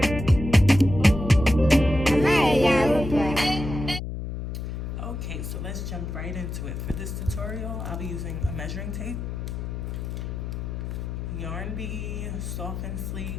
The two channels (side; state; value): left; noise; hum, 5 dB below the sound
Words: so let's jump right into it. For this tutorial, I'll be using a measuring tape, 𝘤𝘰𝘯𝘯𝘦𝘤𝘵 Soft and